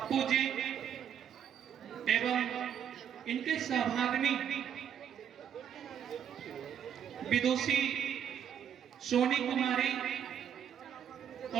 जी एवं इनके सहभागिनी विदुषी सोनी कुमारी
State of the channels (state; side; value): quieter; left; 8.9 dB